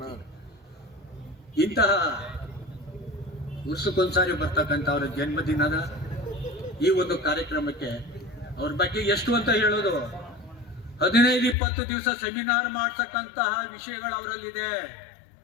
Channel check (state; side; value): drops out; right; at 11.6 s